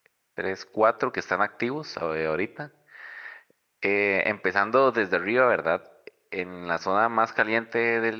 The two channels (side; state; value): both; identical; correlation 1.00